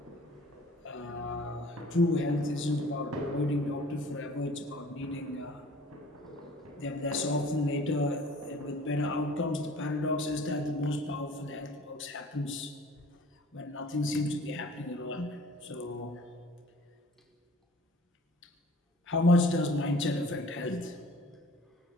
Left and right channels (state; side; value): normal; both; correlation 0.49